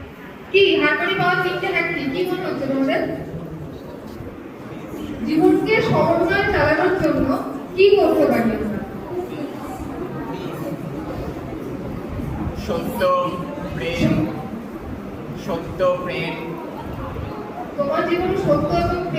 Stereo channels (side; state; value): both; identical; correlation 1.00